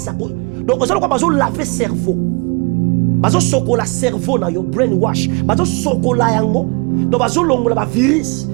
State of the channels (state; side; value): quieter; left; 30.9 dB